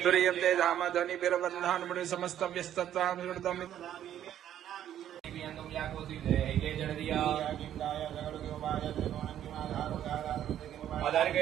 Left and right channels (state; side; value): quieter; left; 11.0 dB